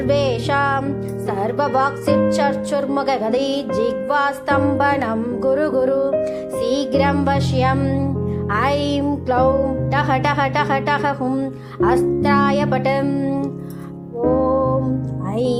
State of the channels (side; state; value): both; identical; correlation 1.00